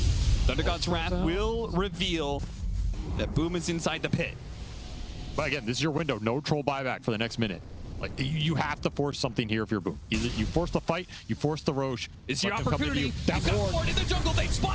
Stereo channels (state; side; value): identical; both; correlation 1.00